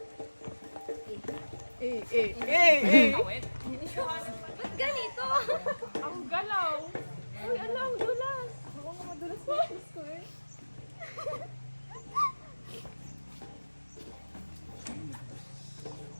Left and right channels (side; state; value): both; inverted; correlation -1.00